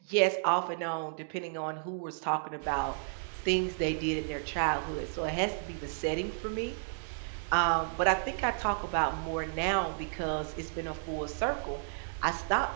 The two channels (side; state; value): left; silent; digital silence